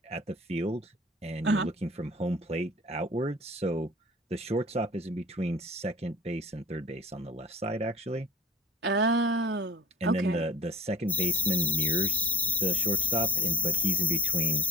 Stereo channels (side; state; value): both; normal; correlation 0.43